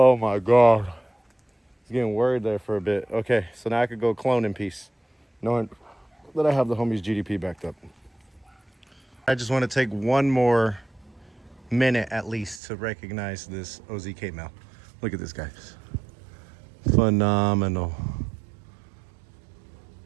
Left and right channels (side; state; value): left; drops out; at 12.6 s